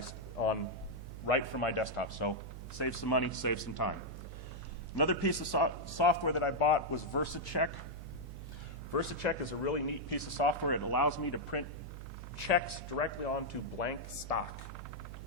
from my desktop. So save some money, save some time. Another piece of software that I bought was VersaCheck. VersaCheck is a really neat piece of software. It allows me to print checks directly onto blank stock.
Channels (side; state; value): right; noise; hum, 10 dB below the sound